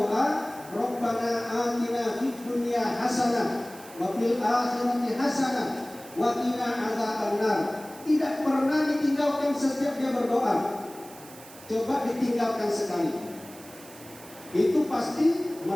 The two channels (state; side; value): noise; right; hiss, 19 dB below the sound